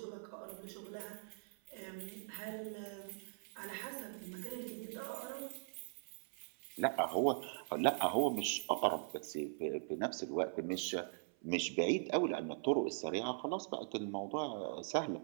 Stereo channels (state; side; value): silent; left; 50 dB below the other